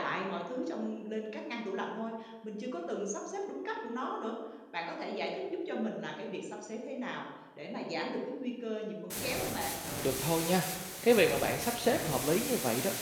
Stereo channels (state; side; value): identical; both; correlation 1.00